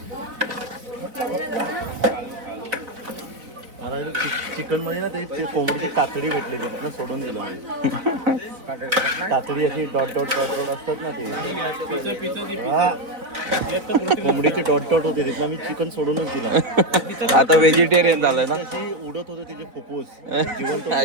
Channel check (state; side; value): late; left; 4.0 ms